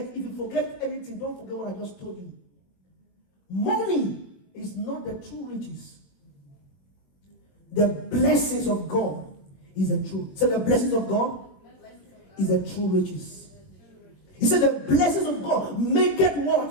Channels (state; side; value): late; right; 21 ms